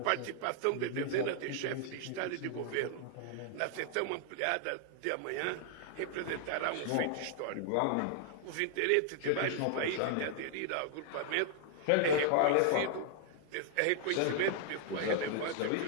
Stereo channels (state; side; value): different; both; correlation 0.00